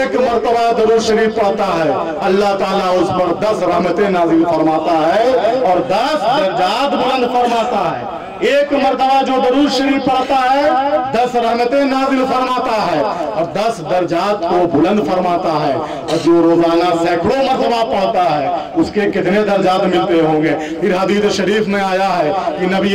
مرتبہ درود شریف پڑھتا ہے اللہ تعالیٰ اس پر 10 رحمتیں نازل فرماتا ہے اور 10 درجات بلند فرماتا ہے. ایک مرتبہ جو درود شریف پڑھتا ہے 10 رحمتیں نازل فرماتا ہے اور 10 درجات کو بلند فرماتا ہے. اور جو روزانہ سینکڑوں مرتبہ پڑھتا ہے اس کے کتنے درجات ملتے ہوں گے؟ پھر حدیث شریف میں آیا ہے کہ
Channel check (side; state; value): both; identical; correlation 1.00